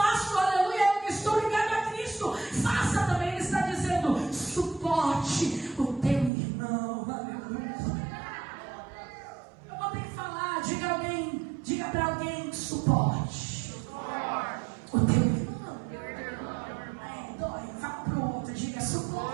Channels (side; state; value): left; drops out; at 6.3 s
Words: aleluia, eu estou ligado a Cristo. Faça também. Ele está dizendo: suporte o teu irmão. Aleluia. Eu vou ter que falar. Diga para alguém: suporte o teu irmão. Dói. Fala para o outro. Diga: